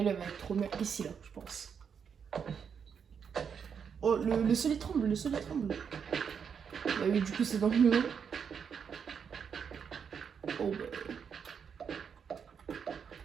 être trop bien ici, là, je pense. Oh, le sol il tremble, Bah oui, du coup, c'est dans le mur. Oh, bah.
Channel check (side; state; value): left; quieter; 6.9 dB